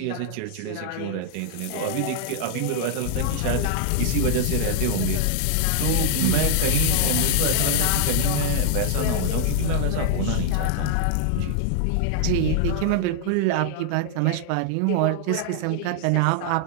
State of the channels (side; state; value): both; different; correlation 0.00